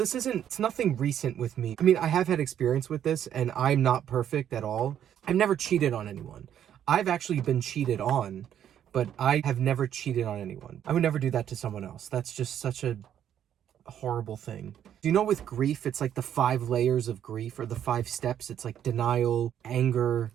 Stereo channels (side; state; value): left; quieter; 10.0 dB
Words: nothing recent with me. I mean, I have had experience with this, and I'm not perfect at all. I've never cheated on anyone. I've actually been cheated on, but I have never cheated on anyone. I would never do that to someone else. That's just such a horrible thing. Do you know with grief, it's like the 5 layers of grief, or the 5 steps? It's like denial, anger,